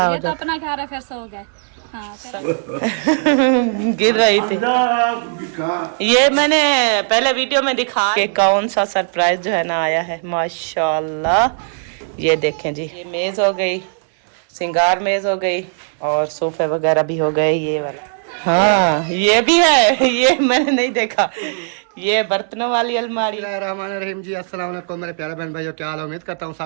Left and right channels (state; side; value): silent; left; 67 dB below the other